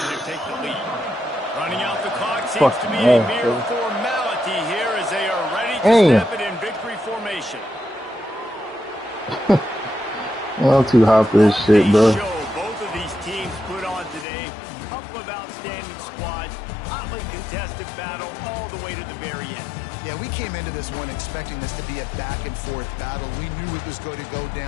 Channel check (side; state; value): right; drops out; at 14.2 s